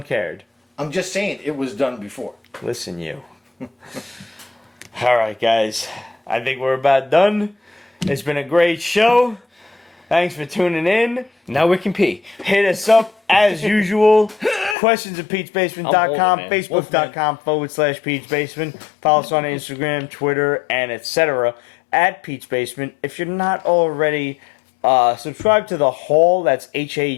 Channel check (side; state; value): right; drops out; at 14.8 s